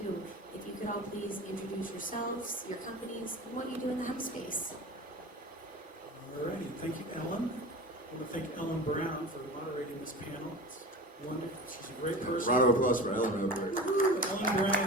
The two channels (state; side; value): normal; both; correlation 0.34